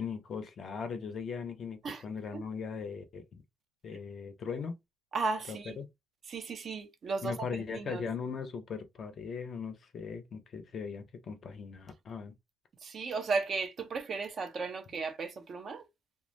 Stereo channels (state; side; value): normal; both; correlation 0.74